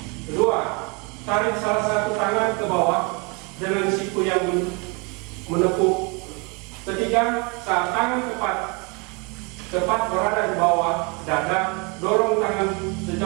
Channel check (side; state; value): left; quieter; 29.6 dB